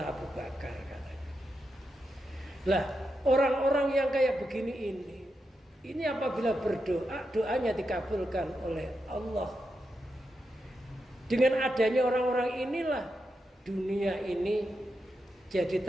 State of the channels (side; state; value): both; normal; correlation 0.86